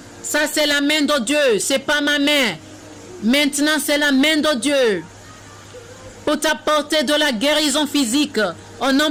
Ça, c'est la main de Dieu. C'est pas ma main. Maintenant, c'est la main de Dieu. Pour t'apporter de la guérison physique. Au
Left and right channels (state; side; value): identical; both; correlation 1.00